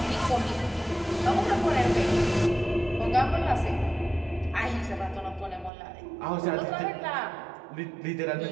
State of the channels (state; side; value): drops out; left; at 5.7 s